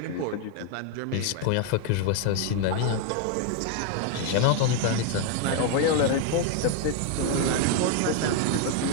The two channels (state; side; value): different; both; correlation 0.01